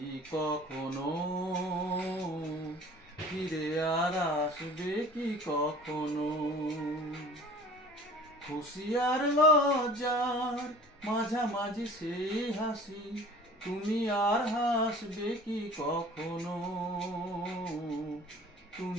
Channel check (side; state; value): both; normal; correlation 0.46